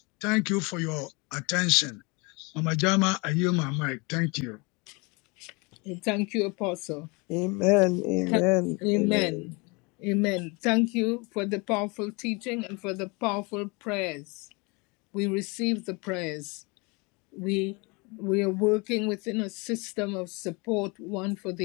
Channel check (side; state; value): right; quieter; 28.6 dB